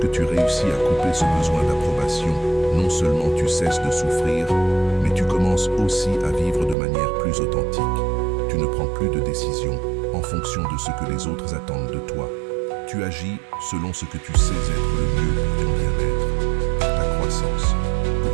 tu réussis à couper ce besoin d'approbation, non seulement tu cesses de souffrir, mais tu commences aussi à vivre de manière plus authentique. Tu ne prends plus de décisions en fonction de ce que les autres attendent de toi. Tu agis selon ce que tu sais être le mieux pour ton bien-être, pour ta croissance,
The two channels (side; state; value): left; drops out; at 6.8 s